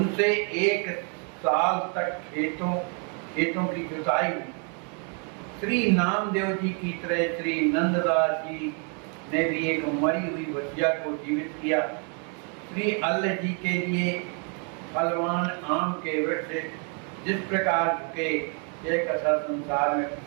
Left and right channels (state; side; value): quieter; left; 39.2 dB